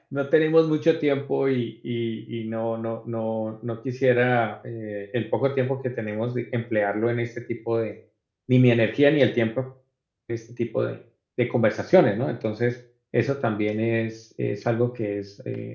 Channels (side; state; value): both; identical; correlation 1.00